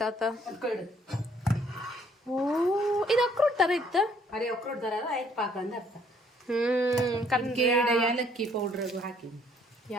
ಆತ ಓ ಇದು ಅಕ್ರೋಟ್ ತರ ಇತ್ತ ಅರೆ ಅಕ್ರೋಟ್ ತರ ಆಯ್ತು ಪಾಕ ಅಂದ ಅರ್ಥ ಏಲಕ್ಕಿ ಪೌಡರ್ ಹಾಕಿ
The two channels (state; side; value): normal; both; correlation 0.64